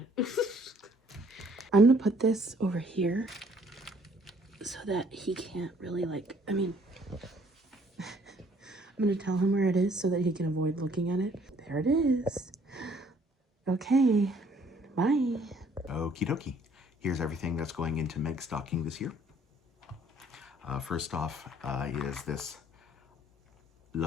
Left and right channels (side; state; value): both; normal; correlation 0.61